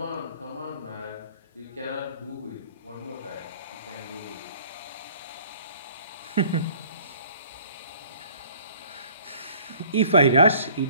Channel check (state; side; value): inverted; both; correlation -0.53